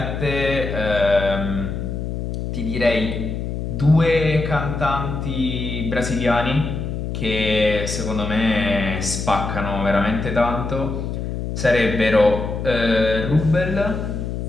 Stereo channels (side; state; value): left; noise; hum, 4 dB below the sound